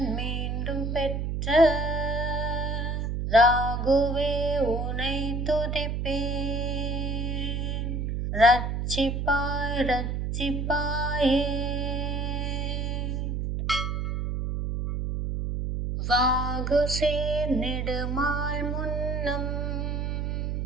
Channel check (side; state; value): right; noise; hum, 1 dB below the sound